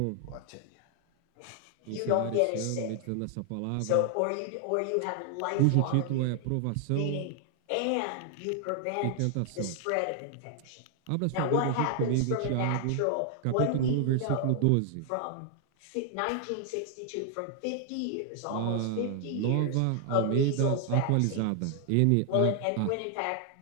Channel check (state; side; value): different; both; correlation 0.00